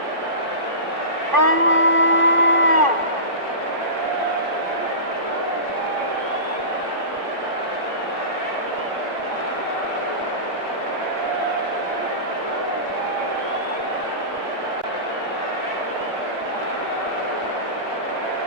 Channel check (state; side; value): late; left; 2.5 ms